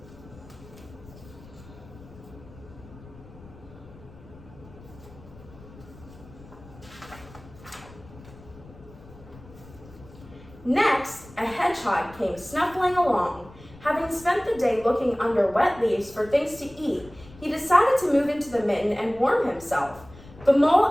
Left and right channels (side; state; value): left; noise; rumble, 20 dB below the sound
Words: Next, a hedgehog came snuffling along. Having spent the day looking under wet leaves for things to eat, he decided to move into the mitten and warm himself. The